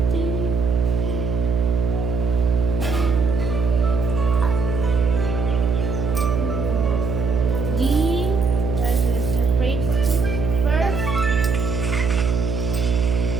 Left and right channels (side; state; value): right; noise; hum, 1 dB below the sound